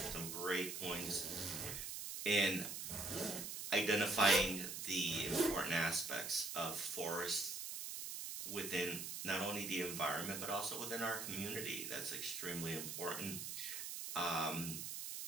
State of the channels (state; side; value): noise; right; hiss, 5 dB below the sound